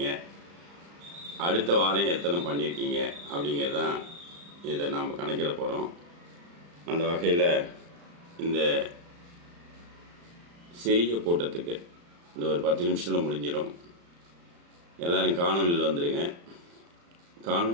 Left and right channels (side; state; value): left; late; 35 ms